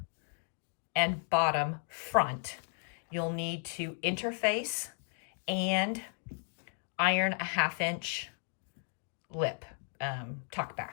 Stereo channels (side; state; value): right; silent; 55 dB below the other